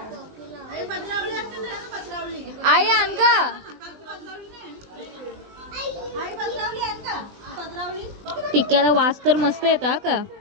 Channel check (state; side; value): late; left; 20 ms